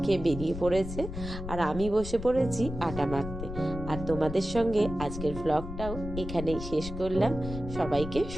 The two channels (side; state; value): left; noise; rumble, 8 dB below the sound